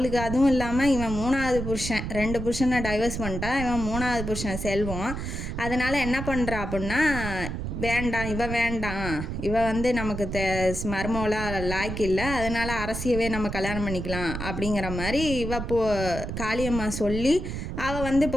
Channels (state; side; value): noise; right; rumble, 5 dB below the sound